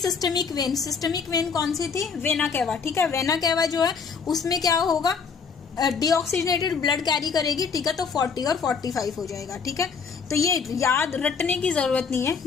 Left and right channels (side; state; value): right; quieter; 5.7 dB